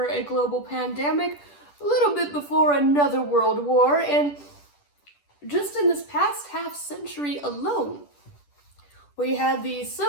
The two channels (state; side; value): late; right; 10 ms